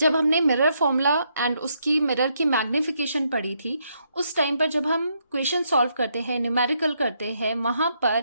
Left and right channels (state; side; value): inverted; both; correlation -0.76